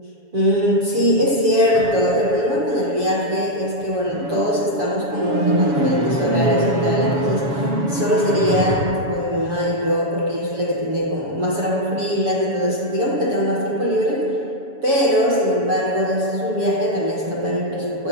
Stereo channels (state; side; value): late; left; 7.1 ms